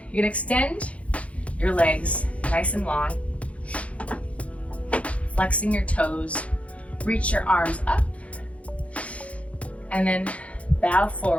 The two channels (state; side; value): late; right; 0.064 ms